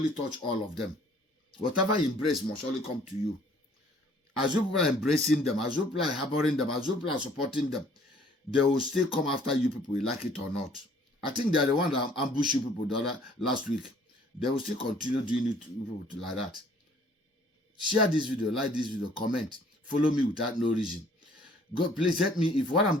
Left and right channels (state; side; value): normal; both; correlation 0.58